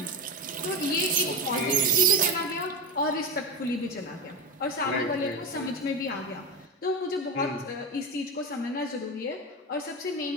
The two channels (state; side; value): normal; both; correlation 0.16